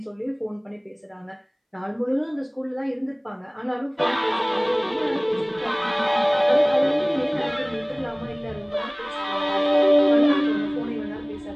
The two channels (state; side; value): identical; both; correlation 1.00